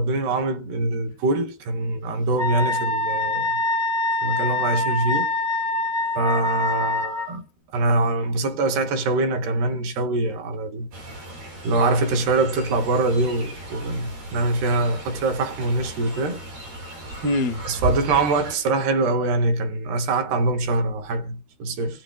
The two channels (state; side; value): late; left; 13 ms